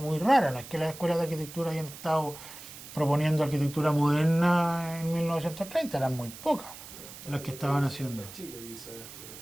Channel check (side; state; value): right; noise; hiss, 15 dB below the sound